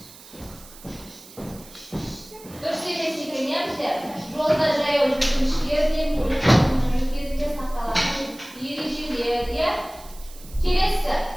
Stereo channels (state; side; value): noise; right; hiss, 20 dB below the sound